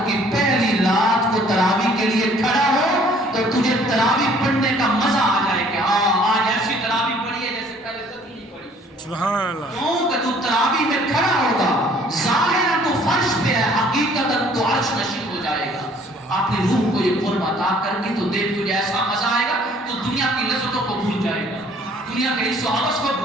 کی پہلی رات کو تراویح کے لیے کھڑا ہو تو تجھے تراویح پڑھنے کا مزہ آ جائے کہ ہاں آج ایسی تراویح پڑھی ہے جیسے پہلے کبھی نہیں پڑھی۔ سبحان اللہ۔ کیوں کہ تو تراویح میں کھڑا ہوگا، ظاہراً تو فرش پہ ہے، حقیقتاً تو عرش نشین ہو جائے گا۔ اپنی روح کو یہ قرب عطا کر کے تو دیکھ تجھے ایسا مزہ آئے گا تو دنیا کی لذتوں کو بھول جائے گا، دنیا کے حصوں حوث کو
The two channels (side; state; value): both; normal; correlation 0.57